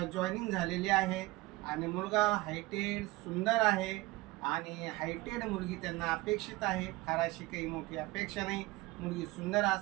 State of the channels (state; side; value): quieter; left; 20.9 dB